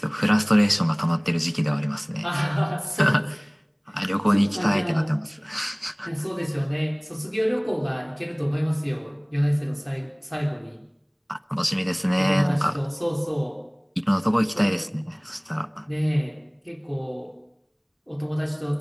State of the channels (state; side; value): identical; both; correlation 1.00